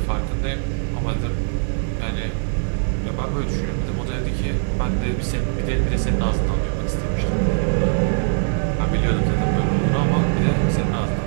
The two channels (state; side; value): silent; left; digital silence